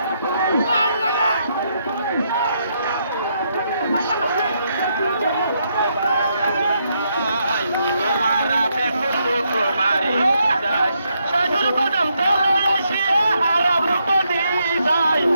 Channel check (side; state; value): both; inverted; correlation -0.77